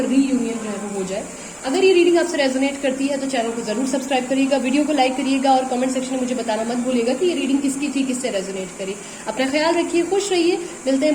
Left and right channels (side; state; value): both; identical; correlation 1.00